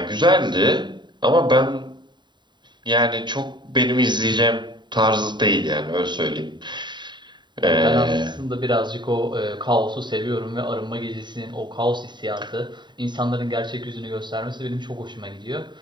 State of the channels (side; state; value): left; late; 0.22 ms